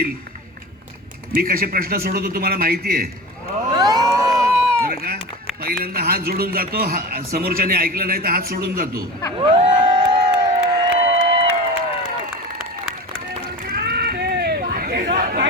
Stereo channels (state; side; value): normal; both; correlation 0.31